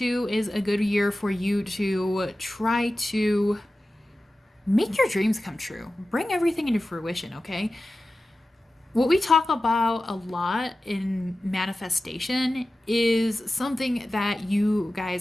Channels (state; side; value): normal; both; correlation 0.95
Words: is a good year for you to try to make your dreams come true. Bring everything into fruition, okay? What we talk about a lot in manifestation is something that you